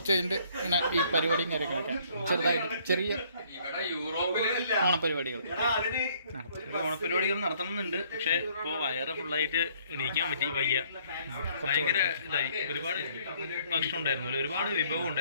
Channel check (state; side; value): inverted; both; correlation -0.63